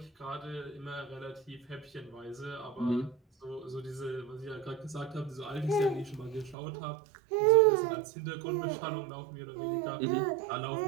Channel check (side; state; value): left; drops out; at 6.6 s